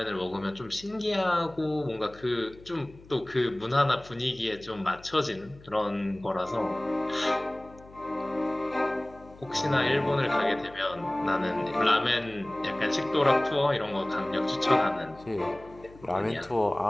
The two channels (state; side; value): noise; left; hum, 22 dB below the sound